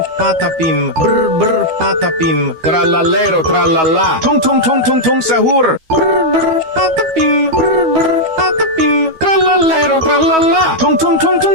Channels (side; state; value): left; late; 12 ms